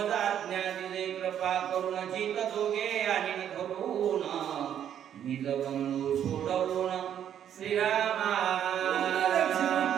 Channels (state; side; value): quieter; left; 9.7 dB